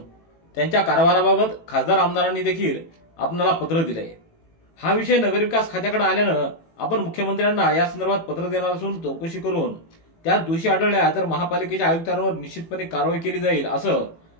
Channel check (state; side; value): late; right; 18 ms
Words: त्यांच्या कारभाराबाबत खासदार आमदारांनी देखील आपणाला पत्र दिले। हा विषय नगरविकास खात्याकडे आल्यानं आपण मुख्यमंत्र्यांना या संदर्भात पत्र देणार असून चौकशी करून त्यात दोषी आढळल्या तर महापालिकेच्या आयुक्तांवर निश्चितपणे कारवाई केली जाईल असं